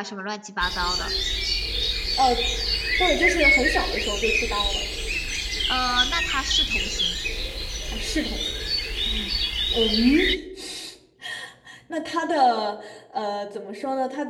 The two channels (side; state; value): both; identical; correlation 1.00